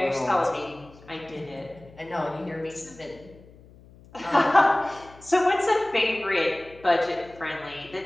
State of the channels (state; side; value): noise; left; hum, 23 dB below the sound